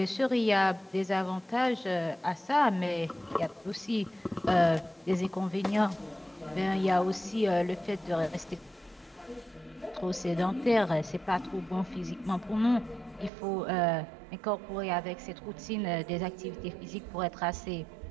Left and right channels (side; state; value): left; drops out; at 13.3 s